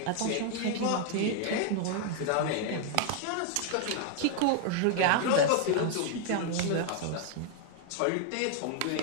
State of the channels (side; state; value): both; different; correlation 0.00